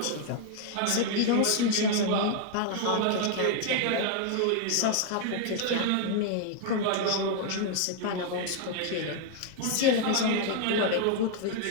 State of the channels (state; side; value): different; both; correlation 0.00